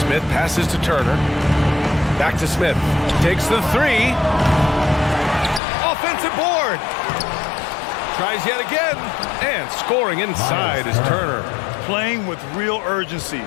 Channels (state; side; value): drops out; right; at 5.6 s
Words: passes to Turner. Back to Smith. Takes the 3. Offensive board. Tries yet again. And scoring inside is Turner. Playing with real urgency.